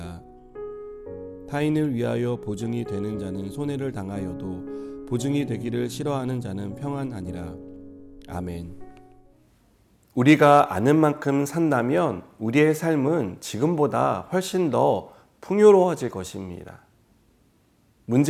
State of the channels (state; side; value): identical; both; correlation 1.00